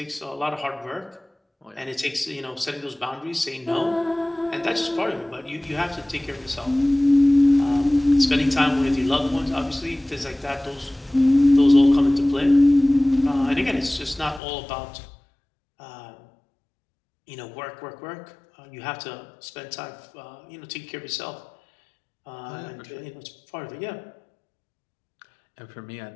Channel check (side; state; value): right; drops out; at 14.4 s